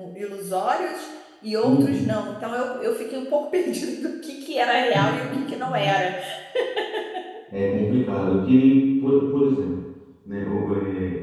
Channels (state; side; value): identical; both; correlation 1.00